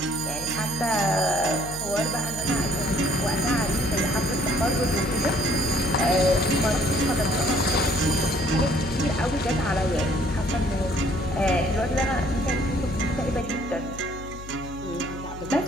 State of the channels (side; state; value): left; noise; hum, 13 dB below the sound